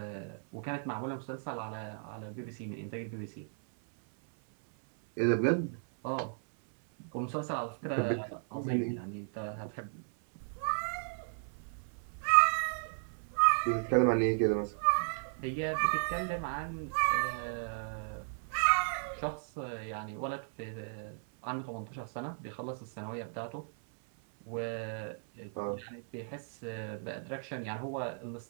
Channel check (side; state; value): left; silent; 54 dB below the other